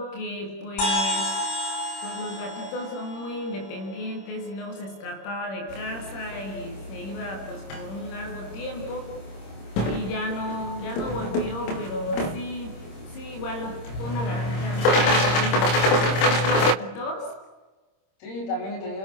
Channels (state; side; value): late; right; 26 ms